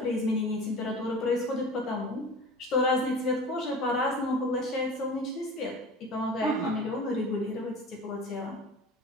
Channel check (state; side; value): normal; both; correlation 0.37